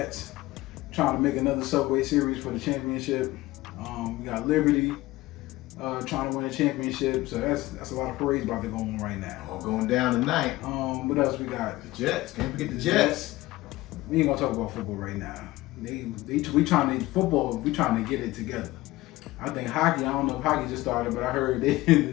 trying to make another Subway Series for the championship. We got Liberty trying to win a championship, so that's a lot of parades about to go on right now. All going down tonight. What else we got? The Jets. Can't forget the Jets. We ain't gonna talk about football right now. We trying to get it together. I think hockey. I don't know if hockey just started, but I heard they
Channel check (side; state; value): right; quieter; 18.4 dB